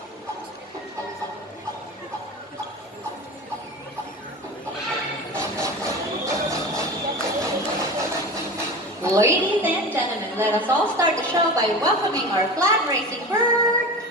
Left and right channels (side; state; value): both; normal; correlation 0.31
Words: Ladies and gentlemen, let us all start the show by welcoming our flag racing bird,